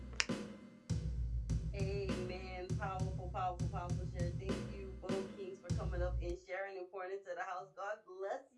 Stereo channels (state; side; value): identical; both; correlation 1.00